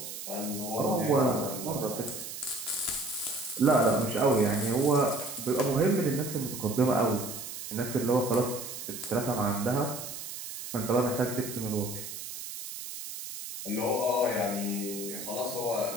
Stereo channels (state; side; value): noise; right; hiss, 9 dB below the sound